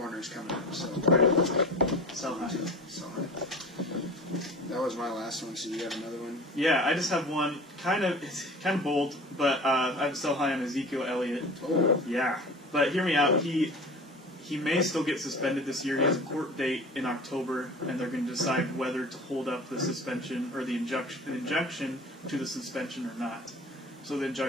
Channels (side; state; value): both; normal; correlation 0.38